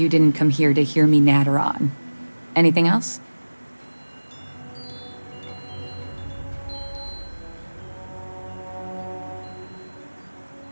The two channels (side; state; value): both; inverted; correlation -1.00